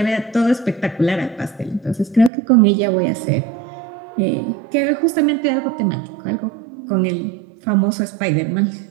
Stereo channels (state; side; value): drops out; left; at 2.3 s